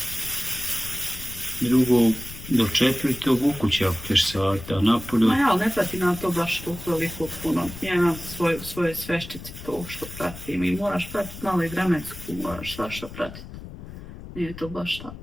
Drugo, do 4. u kući ako ćeš sata, napolju. Ma ja, ali ne pratim na to baš toliko puno. Ja imam svoje sveščice to što pratim i moraš pratiti malo i vremensku, moraš svašta pratiti. Nije to baš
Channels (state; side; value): noise; left; rumble, 13 dB below the sound